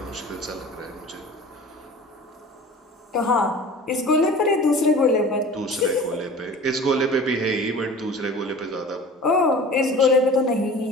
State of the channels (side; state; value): both; normal; correlation 0.41